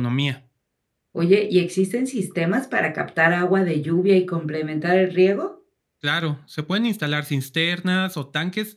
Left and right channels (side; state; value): both; identical; correlation 1.00